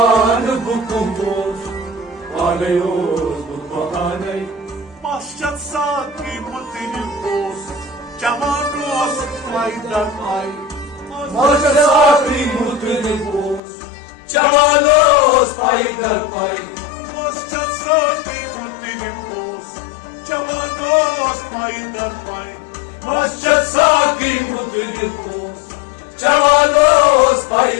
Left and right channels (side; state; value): right; drops out; at 13.6 s